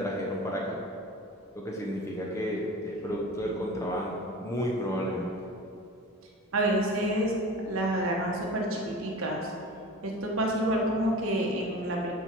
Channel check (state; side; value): normal; both; correlation 0.37